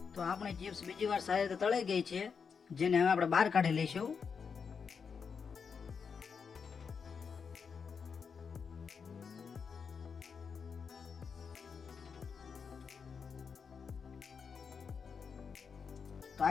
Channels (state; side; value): quieter; right; 6.0 dB